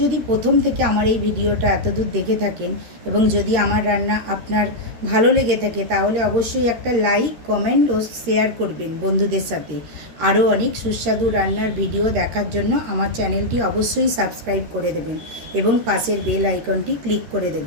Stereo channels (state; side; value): late; left; 13 ms